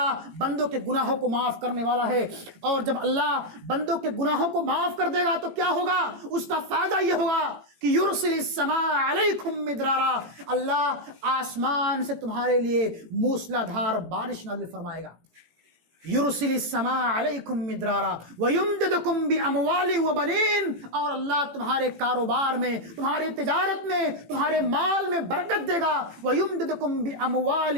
بندوں کے گناہوں کو معاف کرنے والا ہے. اور جب اللہ بندوں کے گناہوں کو معاف کر دے گا تو کیا ہوگا؟ اس کا فائدہ یہ ہوگا کہ یرسل السماء علیکم مدرارا. اللہ آسمان سے تمہارے لیے موسلا دھار بارش نازل فرمائے گا. یرسل السماء علیکم مدرارا ویمددکم باموال وبنین. اور اللہ تمہارے کاروبار میں، تمہاری تجارت میں، تمہارے مال میں برکت دے گا. ویمددکم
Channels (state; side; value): late; left; 18 ms